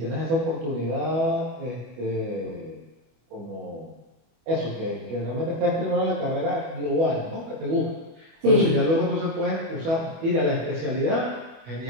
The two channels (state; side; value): late; left; 25 ms